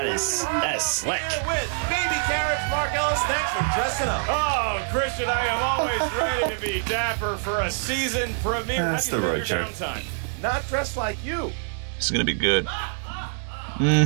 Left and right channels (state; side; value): silent; left; digital silence